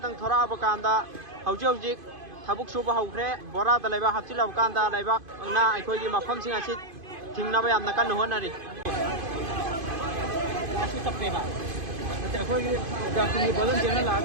थोराबकांदा हौजिक थबुक सुबा हौख्रे बोरादा लेबा हप्चिलबकांदा लेबा ना अखोइगी मफमसिंग असि थिंगनबा यामना कन्न होनरी लासि तप्पेबा अखोइगी जाकुनी बलन जेना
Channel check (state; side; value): late; left; 2.5 ms